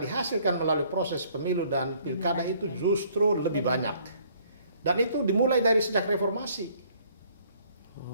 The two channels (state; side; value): inverted; both; correlation -0.61